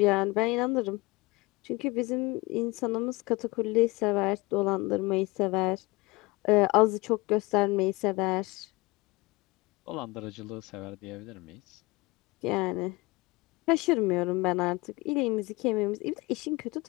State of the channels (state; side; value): quieter; right; 22.7 dB